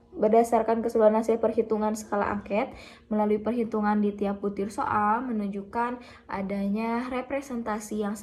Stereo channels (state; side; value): identical; both; correlation 1.00